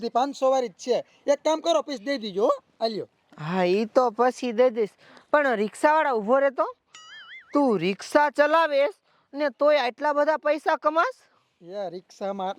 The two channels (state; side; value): identical; both; correlation 1.00